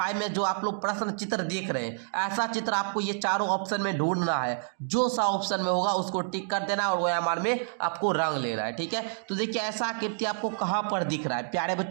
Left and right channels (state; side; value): silent; left; digital silence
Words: में जो आप लोग प्रश्न चित्र देख रहे हैं, ऐसा चित्र आपको ये चारों ऑप्शन में ढूंढना है, जो सा ऑप्शन में होगा उसको टिक कर देना और OMR में आपको रंग लेना है। ठीक है, तो देखिए ऐसा आकृति आपको कहाँ पर दिख रहा है प्यारे